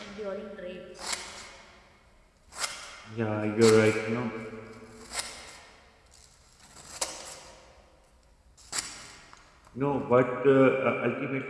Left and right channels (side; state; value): both; identical; correlation 1.00